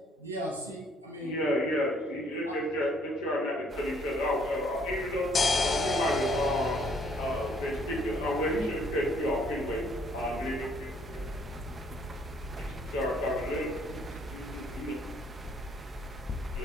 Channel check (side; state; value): both; normal; correlation 0.64